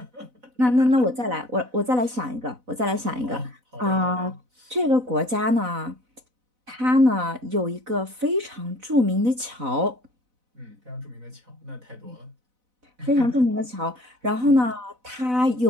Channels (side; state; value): left; late; 4.0 ms